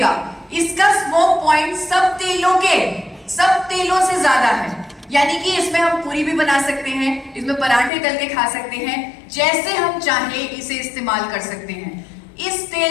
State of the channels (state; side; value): drops out; right; at 7.9 s